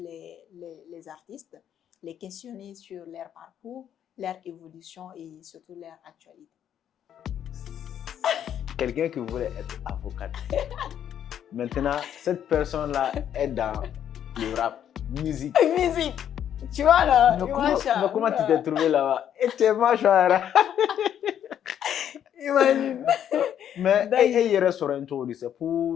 les artistes, les questionner sur leur parcours, leur évolution et surtout leur actualité. Quelqu'un qui voulait être avocate. Maintenant, cette personne-là est dans le rap, musique. Musique. Tu vois là. Mais comment tu t'es trouvé là-bas? Et tu es machin. Imagine. Mais il reste sur un tour, c'est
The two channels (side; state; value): right; quieter; 9.8 dB